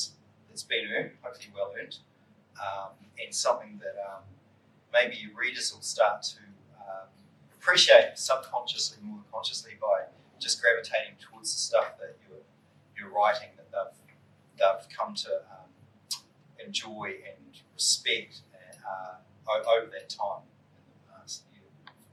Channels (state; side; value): identical; both; correlation 1.00